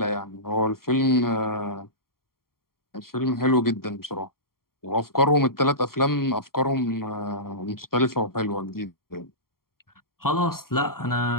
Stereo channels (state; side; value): late; right; 0.93 ms